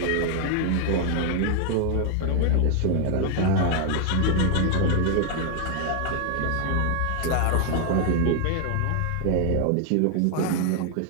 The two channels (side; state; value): both; different; correlation 0.00